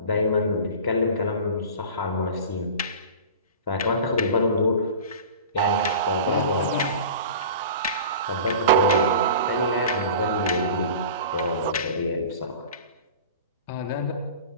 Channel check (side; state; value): both; inverted; correlation -0.37